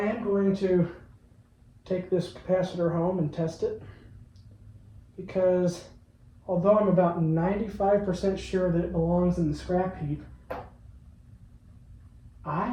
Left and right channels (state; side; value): identical; both; correlation 1.00